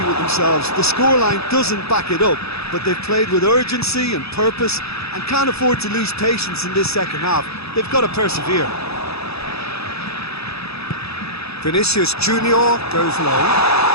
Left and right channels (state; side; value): late; right; 0.78 ms